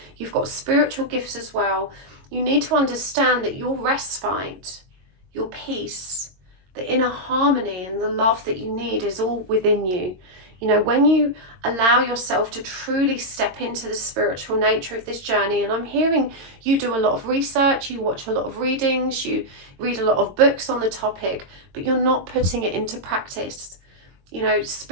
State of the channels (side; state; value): left; late; 22 ms